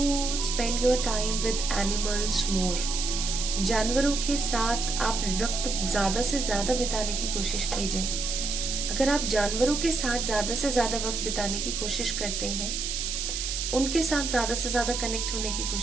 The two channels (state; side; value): noise; right; hiss, 3 dB below the sound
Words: spend your time with animals more. जानवरों के साथ आप वक्त ज्यादा से ज्यादा बिताने की कोशिश कीजिए। अगर आप जानवरों के साथ ज्यादा से ज्यादा वक्त बिताने की कोशिश करते हैं, उनके साथ ज्यादा से ज्यादा कनेक्ट होने की